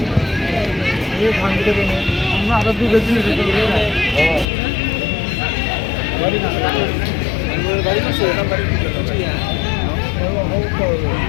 আমরা আরো দুটো দিন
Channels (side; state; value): right; drops out; at 4.5 s